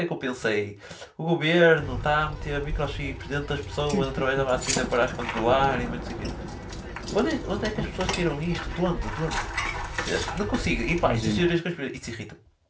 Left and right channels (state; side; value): identical; both; correlation 1.00